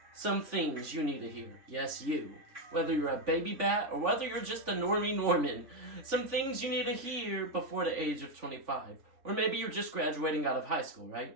some things you need to hear. Yes, you. Whether you're a baby bat or whether you're just a normie Norman. Some things you need to hear before the age of 25. Or maybe you're just graduating out of high school,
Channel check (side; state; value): left; late; 3.5 ms